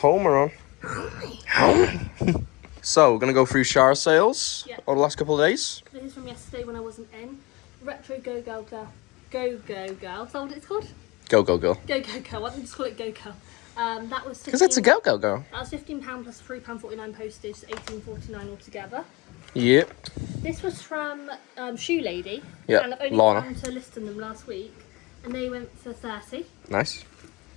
on. Homer. So, we're going to go through shower sales over the last couple of days. This is from yesterday when I wasn't in. Retro Go Go Girl. Go Go Girl. Is that what it's called? Go Go Girl. Go Go Girl. Why don't we just call it Go Girl? That was because it's a Go Go Girl. That was £15 plus £3.49 postage, £18.49 altogether. Yep. This was from Shoe Lady. Yep. And I've only Lorna. gone to listing them last week, and they went for 30. Nice.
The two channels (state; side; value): quieter; right; 23.9 dB